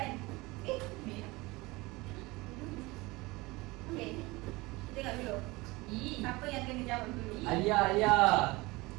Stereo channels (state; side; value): quieter; left; 22.5 dB